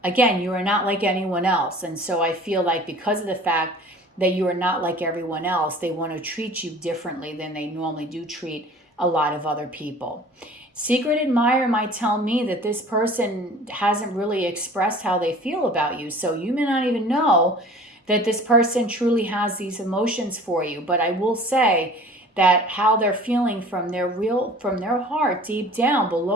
Again, you are not like anyone else. And so I feel like because of the fact that you are not like everyone else, they want to treat you differently than they normally do treat a lot of other people. Secret admirer might tell me that this person hasn't really expressed how they feel about you. So you may not even know that this person truly has these emotions for you. But I will say that how they're feeling from their heart, deep down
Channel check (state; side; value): normal; both; correlation 0.45